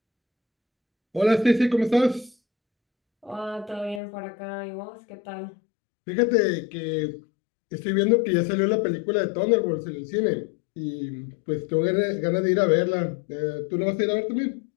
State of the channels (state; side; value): drops out; right; at 4.0 s